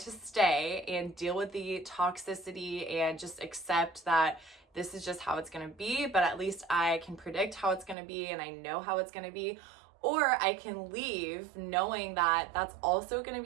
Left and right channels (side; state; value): left; drops out; at 8.0 s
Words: stay and deal with the toxicity and just accept that this is just how it's going to be, but at least I can predict how it's going to be and I know how it's going to be. Or I can leave knowing that that's also going to